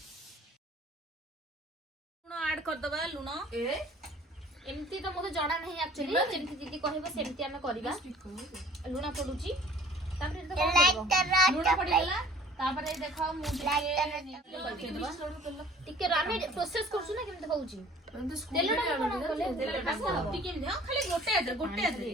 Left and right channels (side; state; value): both; normal; correlation 0.51